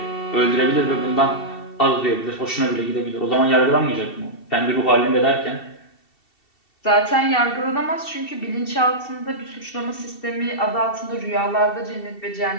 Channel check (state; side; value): late; right; 2.7 ms